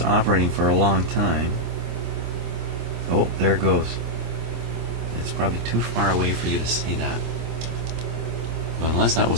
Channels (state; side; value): late; left; 26 ms